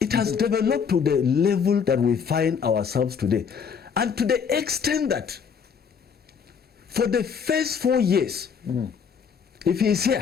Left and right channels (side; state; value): right; quieter; 6.6 dB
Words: it has developed to the level that we find ourselves today. And to the extent that for the first 4 years, if he is